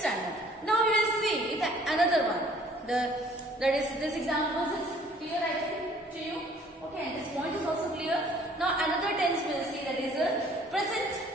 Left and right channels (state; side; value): normal; both; correlation 0.56